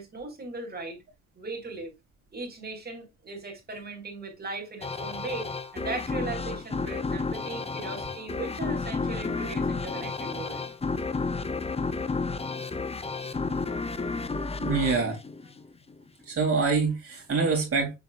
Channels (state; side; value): normal; both; correlation 0.31